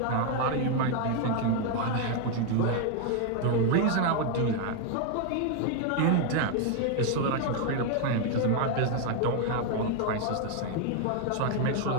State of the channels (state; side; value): different; both; correlation 0.01